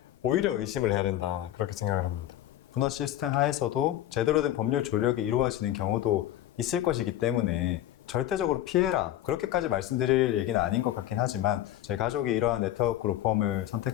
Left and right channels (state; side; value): quieter; right; 13.1 dB